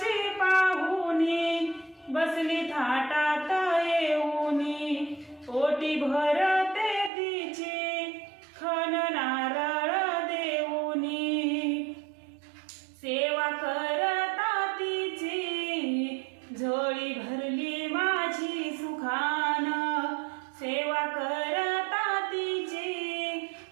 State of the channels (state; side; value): drops out; left; at 7.1 s